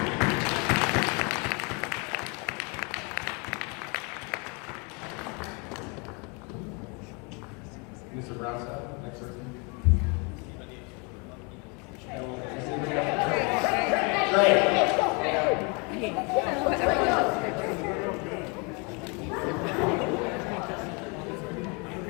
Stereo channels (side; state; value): right; quieter; 32.1 dB